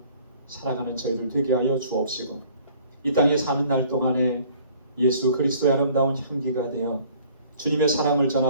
살아가는 저희들 되게 하여 주옵시고 이 땅에 사는 날 동안에 예수 그리스도의 아름다운 향기가 되어 주님의 사랑을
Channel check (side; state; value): both; inverted; correlation -0.54